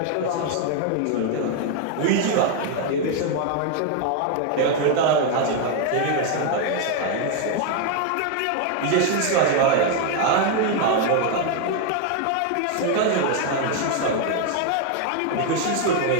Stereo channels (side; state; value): both; different; correlation 0.01